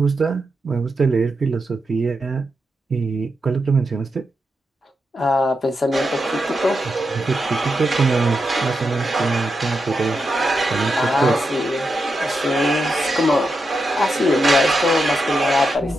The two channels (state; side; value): normal; both; correlation 0.86